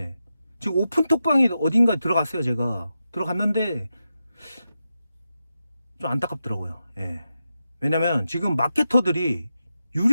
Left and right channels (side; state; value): both; inverted; correlation -0.89